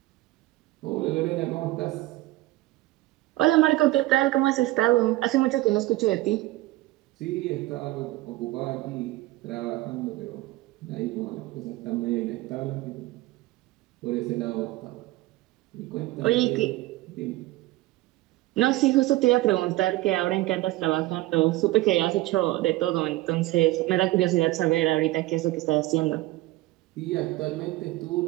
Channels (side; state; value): left; quieter; 18.0 dB